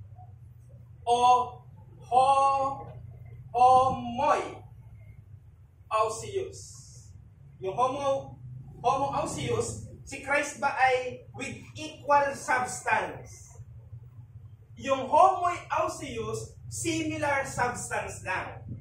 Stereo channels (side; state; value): both; identical; correlation 1.00